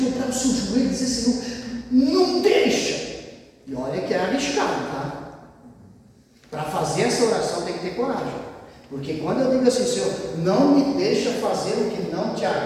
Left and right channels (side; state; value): both; identical; correlation 1.00